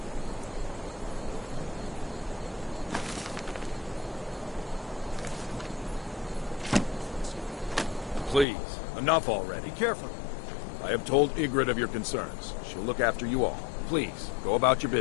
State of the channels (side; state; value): right; drops out; at 8.5 s